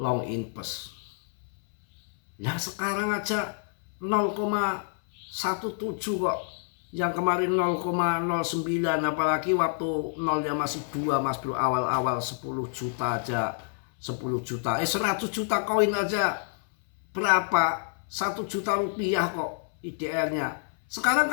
invest. Ya sekarang aja 0,17 kok. Yang kemarin 0,09, apalagi waktu nolnya masih 2 Mas Bro, awal-awal 10 juta aja. 10 juta. 100 juta koin aja berapa? 1 juta rupiah kok IDR-nya. Sekarang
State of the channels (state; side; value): silent; right; 59 dB below the other